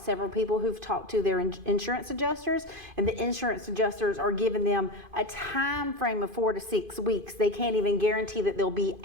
people who've talked to their insurance adjusters, and the insurance adjusters are giving them a time frame of 4 to 6 weeks. They can't even guarantee that they'll be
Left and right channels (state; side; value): late; left; 2.5 ms